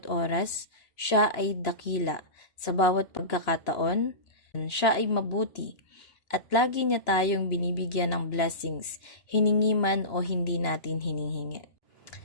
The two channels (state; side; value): late; right; 2.9 ms